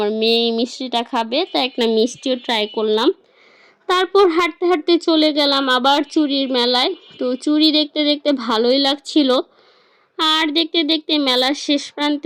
মেয়ে এই মিষ্টিটা খাবে, তাই একটা মিষ্টিও ট্রাই করলাম। তারপর হাঁটতে হাঁটতে চলে গেলাম আবার চুড়ির মেলায়। তো চুড়ি দেখতে দেখতে ভালোই লাগছিল। আর দেখতে দেখতে মেলার শেষ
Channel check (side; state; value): both; identical; correlation 1.00